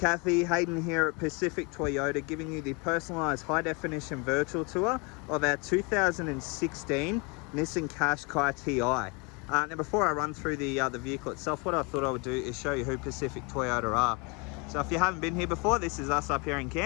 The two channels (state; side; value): quieter; right; 30.3 dB